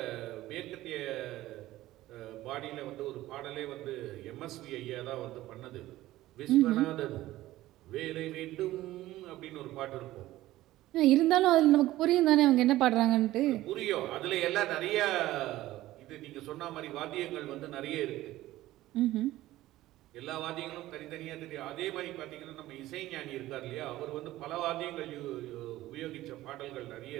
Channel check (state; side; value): quieter; left; 15.9 dB